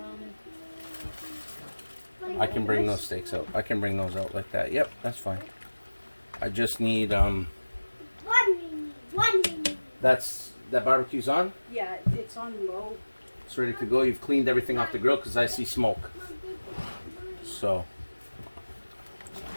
I can bring those steaks out. I can bring those out like that. Yep, that's fine. I just need One minute. that barbecue's on. Yeah, it's on low. It's ready to go. You've cleaned everything off the grill because I see smoke. So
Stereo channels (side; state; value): both; inverted; correlation -1.00